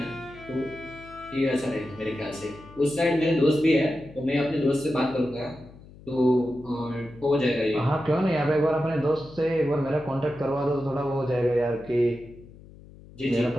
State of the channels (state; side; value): noise; left; hum, 20 dB below the sound